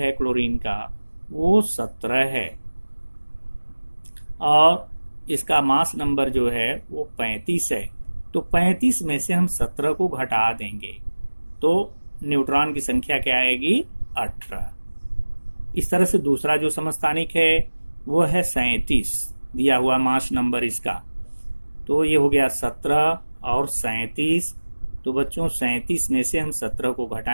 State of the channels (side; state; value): both; inverted; correlation -1.00